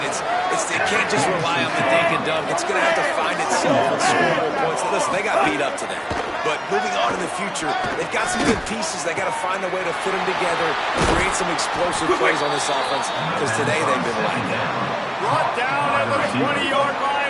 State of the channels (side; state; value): both; identical; correlation 1.00